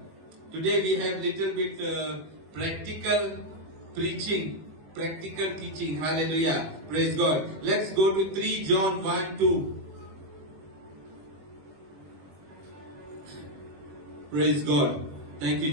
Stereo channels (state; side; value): late; left; 21 ms